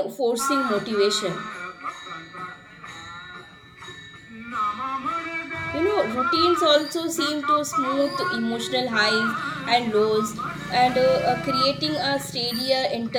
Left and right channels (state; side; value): identical; both; correlation 1.00